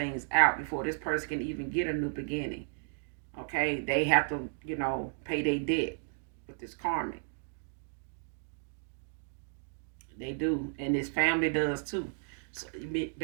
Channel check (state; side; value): silent; left; digital silence